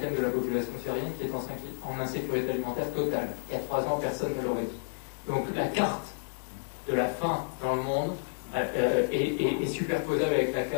de la population syrienne qui est en insécurité alimentaire totale. Il y a 3 ans, personne ne l'aurait dit. Donc la carte de la faim dans le monde est superposable avec la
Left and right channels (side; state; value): right; silent; digital silence